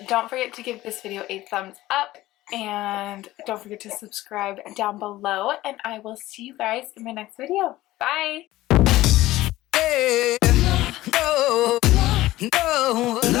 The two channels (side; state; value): right; quieter; 16.6 dB